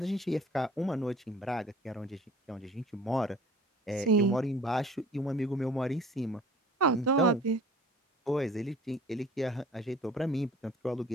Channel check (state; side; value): normal; both; correlation 0.48